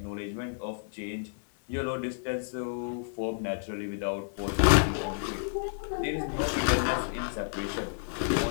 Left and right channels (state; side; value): silent; right; digital silence